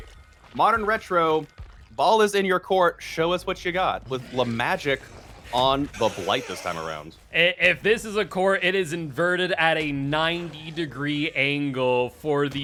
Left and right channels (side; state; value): both; identical; correlation 1.00